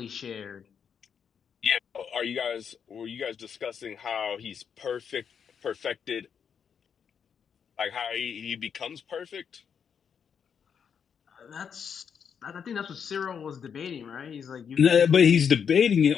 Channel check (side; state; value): right; quieter; 7.2 dB